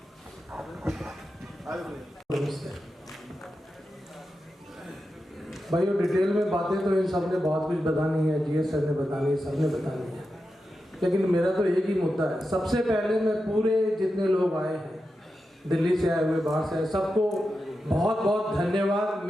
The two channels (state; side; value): normal; both; correlation 0.90